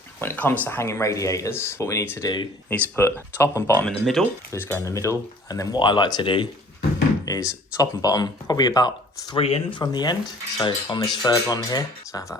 when it comes to hanging radiators, what we need to do is put top and bottom in the middle. Just go in the middle. And then what I like to do is top and bottom, probably about 3 in from the end. So on this third one here, so I have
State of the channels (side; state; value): both; normal; correlation 0.51